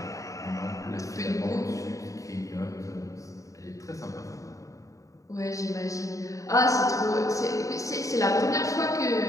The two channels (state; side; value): late; right; 0.16 ms